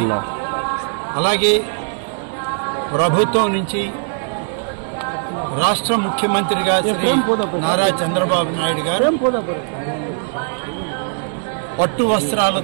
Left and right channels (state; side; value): silent; left; 66 dB below the other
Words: అలాగే ప్రభుత్వం నుంచి రాష్ట్ర ముఖ్యమంత్రిగా శ్రీ నారా చంద్రబాబు నాయుడు గారు పట్టు